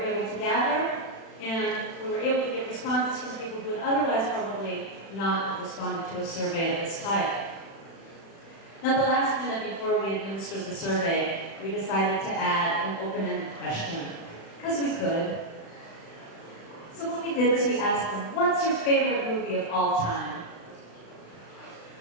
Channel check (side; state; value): right; late; 36 ms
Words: to gather, and we were able to get responses from people who would otherwise probably not have responded to a survey of this type. Now, the last minute before we administered the survey, we decided to add an open-ended question, because we could. So what we did is we asked them, what's your favorite movie of all time?